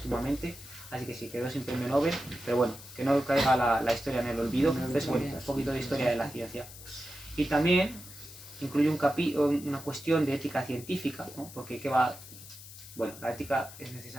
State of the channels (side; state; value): left; noise; hiss, 16 dB below the sound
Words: así que sí, quedó sin premio Nobel, pero bueno, que no caiga la historia en el olvido. Entonces, bueno, un poquito de historia de la ciencia. Y también incluye una cuestión de ética científica, ¿no? Porque bueno, la ética es